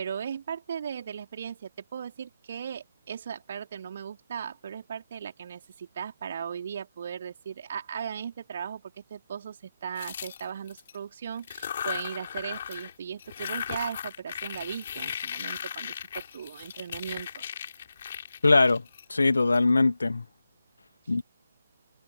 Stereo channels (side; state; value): both; inverted; correlation -0.89